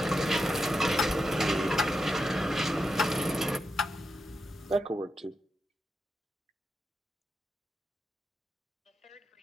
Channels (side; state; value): both; normal; correlation 0.87